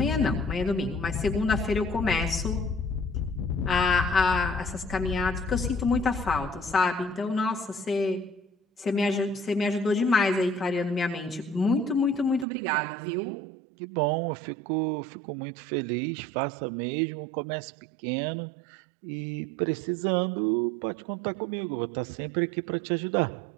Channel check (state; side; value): drops out; left; at 12.5 s